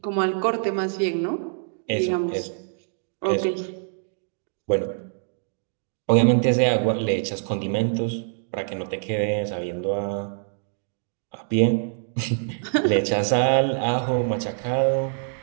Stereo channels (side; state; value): left; silent; digital silence